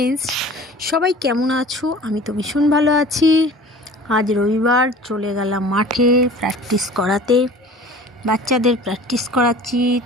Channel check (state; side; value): normal; both; correlation 0.43